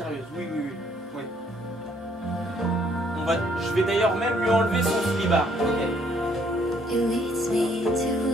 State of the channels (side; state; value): both; normal; correlation 0.66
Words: Oui. Je vais d'ailleurs même lui enlever son slibard. Okay. It leads me to